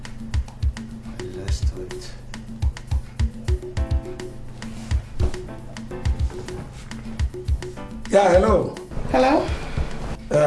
Let's do it. Yeah, hello. Hello?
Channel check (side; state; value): both; identical; correlation 1.00